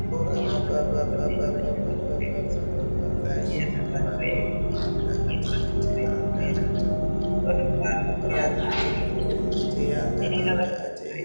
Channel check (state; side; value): inverted; both; correlation -1.00